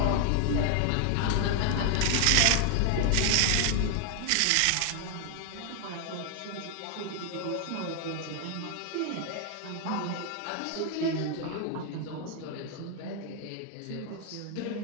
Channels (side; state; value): both; different; correlation 0.00